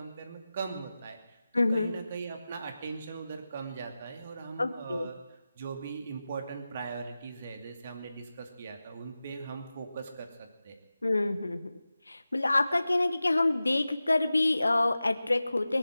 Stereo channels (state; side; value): inverted; both; correlation -0.94